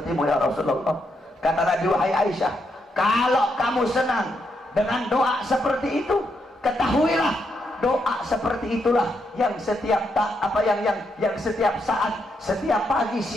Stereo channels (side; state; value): both; normal; correlation 0.80